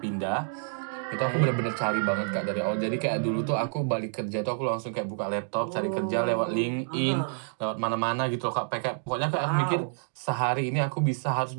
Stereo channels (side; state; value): left; silent; digital silence